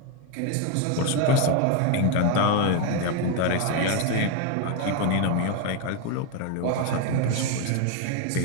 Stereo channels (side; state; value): both; different; correlation 0.01